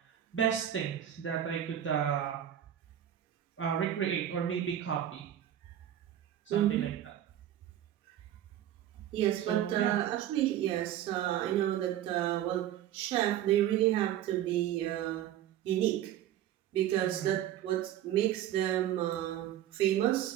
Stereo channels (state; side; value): quieter; left; 11.4 dB